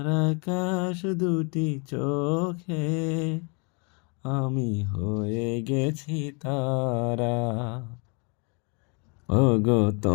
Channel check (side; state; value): right; quieter; 34.2 dB